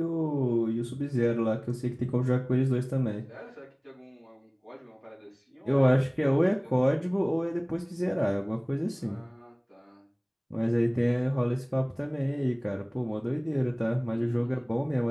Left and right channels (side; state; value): both; identical; correlation 1.00